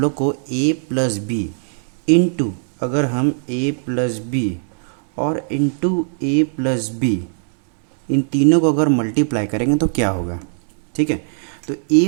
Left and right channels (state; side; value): silent; left; digital silence